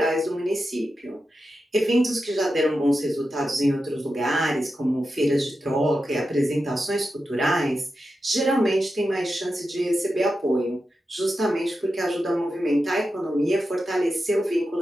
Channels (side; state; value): both; normal; correlation 0.90